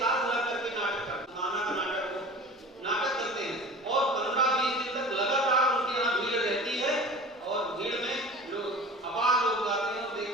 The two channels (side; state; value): both; normal; correlation 0.38